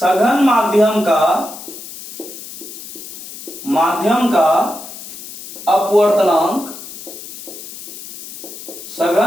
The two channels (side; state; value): left; noise; hiss, 13 dB below the sound